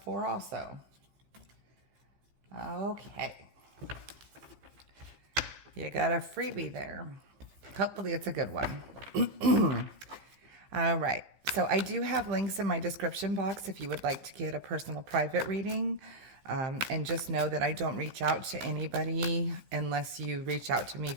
4 also. Okay. You got a freebie there. Hopefully it's a good one. All right. So I do have links in my description box if you would like to get a personal private reading. And just know that I don't reach out to anybody unless you reach out to me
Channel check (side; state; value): left; late; 15 ms